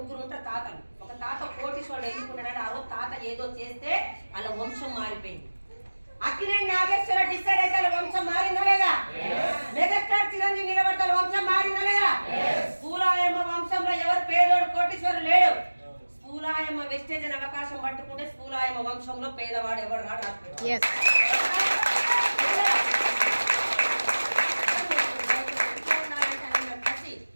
ఉంటారు తాతలు. ఒక తాత కోటీశ్వరుడు ఎన్నుకున్నాడు. ఆ రోజు తాత ఏదో చేస్తే అలా వంశం మారిపోయింది. అక్కినేని నాగేశ్వర డిసైడ్ అయితే అలా వంశం మారిందా లేదా? మెగాస్టార్ చిరంజీవి నిలబడతారు, వంశం మారిందా లేదా? స్కూలాయమ్మ వంశంలో ఎవరు పేదోడు కోటీశ్వరుడు లేడు. స్కూలాయమ్మ వెస్టేజ్ అని అవకాశం పట్టుకుంటే స్కూలాయమ్మ వంశంలో పేదవాడు ఎవరు రాడు.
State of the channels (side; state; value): both; inverted; correlation -1.00